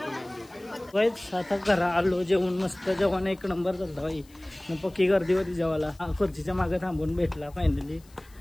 वाईच आता घरा आलो, जेवण मस्त, जेवण एक नंबर झालं बाई. मग पक्की गर्दी होती जेवायला. खुर्चीच्या मागे थांबून भेटला फायनली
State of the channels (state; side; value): noise; left; hiss, 28 dB below the sound